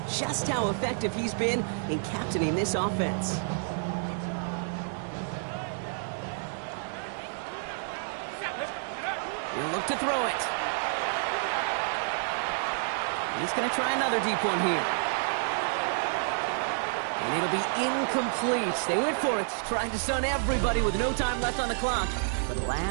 just how effective he's been in captaining this offense. He'll look to throw it. He's going to try another deep one here. And it'll be incomplete. They went for it, trying to stun everybody with no time left on the clock. But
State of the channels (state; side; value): silent; left; digital silence